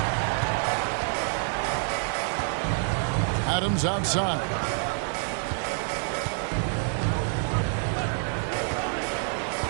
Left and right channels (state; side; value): silent; left; 56 dB below the other